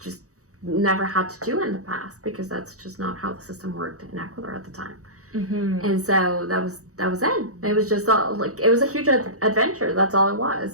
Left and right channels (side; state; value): left; late; 0.65 ms